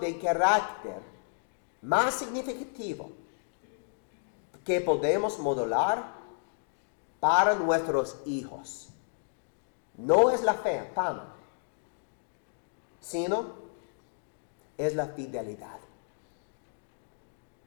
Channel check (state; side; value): silent; right; digital silence